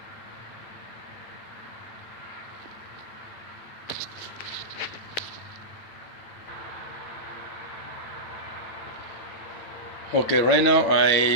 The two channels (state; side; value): late; right; 8.9 ms